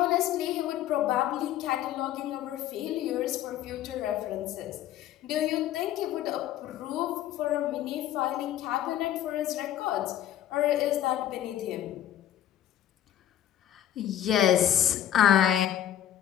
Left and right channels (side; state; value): right; quieter; 11.5 dB